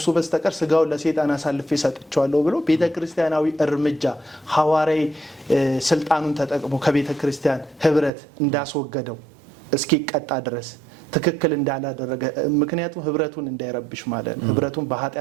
በስተቀር ስጋውን ለሰይጣን አሳልፌ ሰጥቻለሁ ብሎ ቤተክርስቲያናዊ እርምጃ ሐዋርያዊ ስልጣኑን ተጠቅሞ ከቤተክርስቲያን ህብረት እንዳስወገደው እስኪቀጣ ድረስ ትክክል እንዳላደረገ ምክንያቱም ህብረቱን እንዳይረብሽ ማለት ነው ህብረቱን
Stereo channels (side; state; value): left; drops out; at 8.1 s